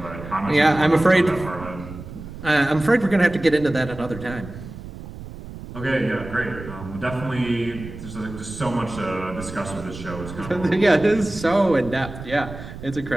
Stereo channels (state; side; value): noise; right; rumble, 12 dB below the sound